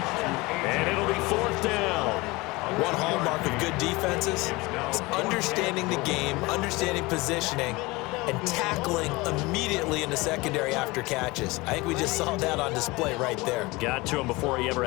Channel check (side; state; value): right; quieter; 22.9 dB